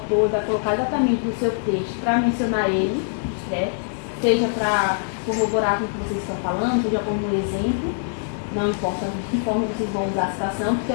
vai colocar exatamente no seu texto para mencionar ele, né? Seja para corroborar com o que vocês estão falando, seja como um exemplo, não importa de que forma vocês vão usar a citação, que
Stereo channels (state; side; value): silent; right; digital silence